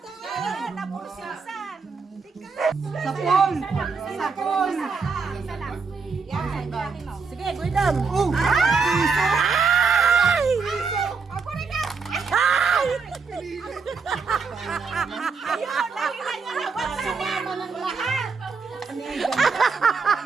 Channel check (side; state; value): left; quieter; 5.0 dB